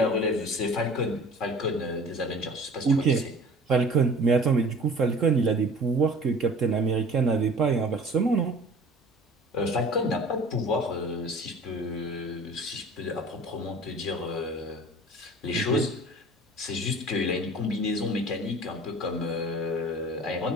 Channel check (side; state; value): both; normal; correlation 0.44